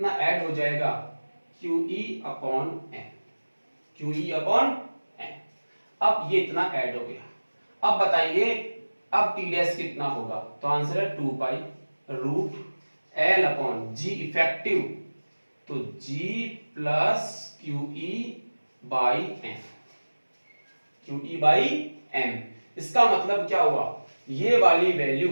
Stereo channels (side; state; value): both; inverted; correlation -1.00